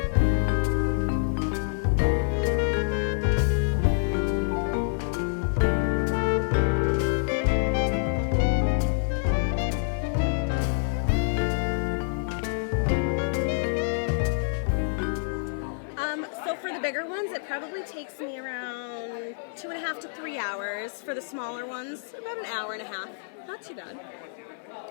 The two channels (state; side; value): silent; right; digital silence